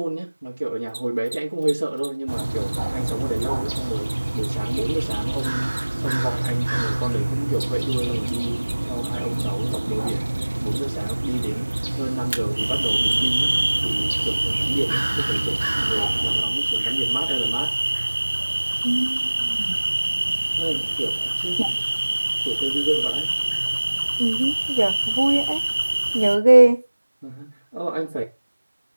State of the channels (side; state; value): both; inverted; correlation -1.00